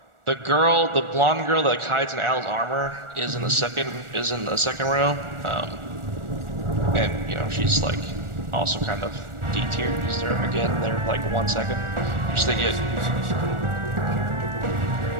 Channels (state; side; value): late; left; 1.4 ms